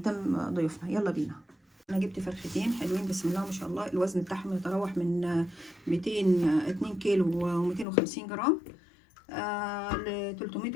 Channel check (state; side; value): drops out; right; at 7.9 s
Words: ضيوفنا. يلا بينا. انا جبت فرختين حلوين بسم الله ما شاء الله، الوزن بتاعهم يتراوح من 2 كيلو و250 جرام ل 300